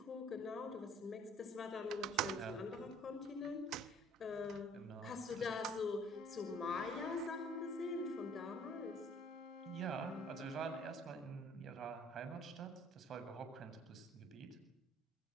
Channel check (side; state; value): both; normal; correlation 0.56